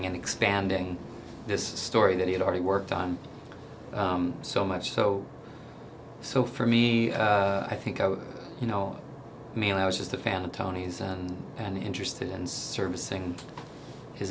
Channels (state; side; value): identical; both; correlation 1.00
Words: and expanding this story that he had already worked on so much. So for me, I think mainly I was just a fan of Tony's and interested in servicing his